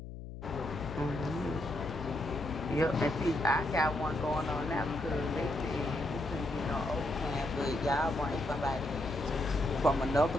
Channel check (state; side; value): noise; left; hum, 10 dB below the sound